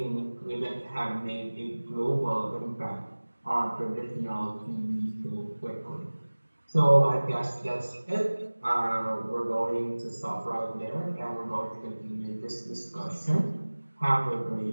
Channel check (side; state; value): both; inverted; correlation -1.00